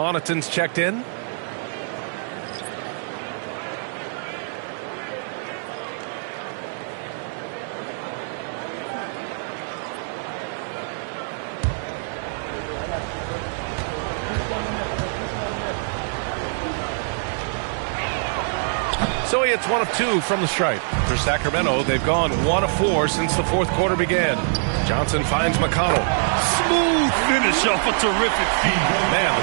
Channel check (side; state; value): left; silent; 63 dB below the other